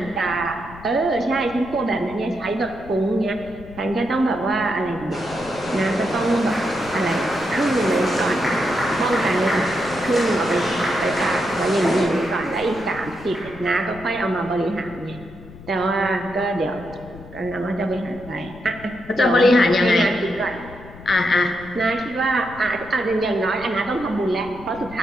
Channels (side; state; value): left; noise; rumble, 17 dB below the sound